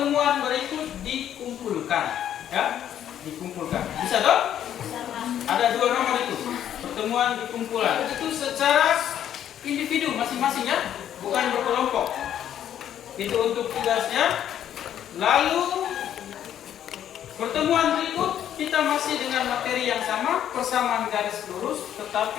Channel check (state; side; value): quieter; right; 10.4 dB